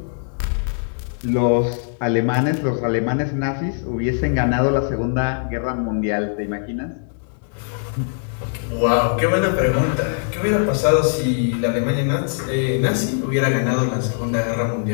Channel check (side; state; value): right; silent; digital silence